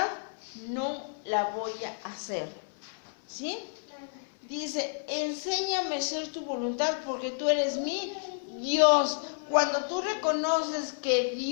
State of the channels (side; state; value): right; silent; 58 dB below the other